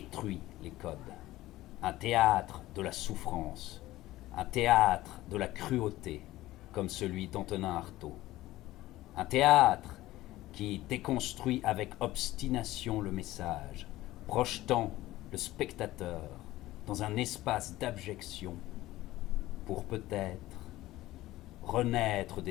les codes. Un théâtre de la souffrance. Un théâtre de la cruauté, comme celui d'Antonin Artaud. Un théâtre qui déconstruit avec obstination le message, projetant le spectateur dans un espace d'abjection pour peut-être renaître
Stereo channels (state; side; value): quieter; right; 16.6 dB